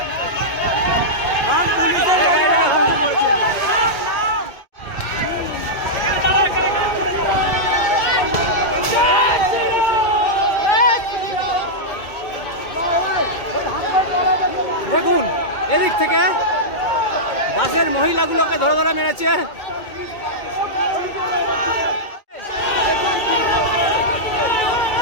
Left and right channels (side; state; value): right; late; 2.2 ms